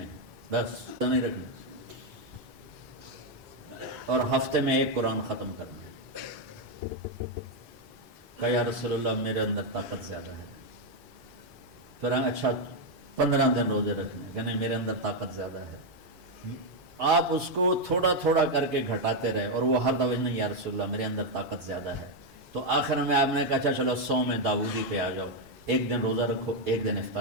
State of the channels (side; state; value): left; late; 4.6 ms